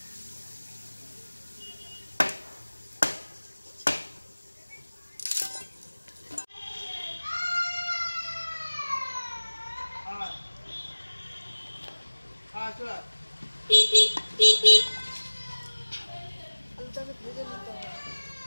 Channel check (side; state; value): both; inverted; correlation -1.00